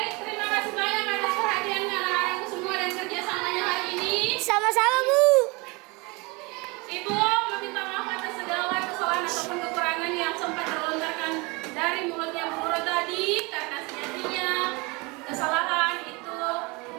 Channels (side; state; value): left; quieter; 26.8 dB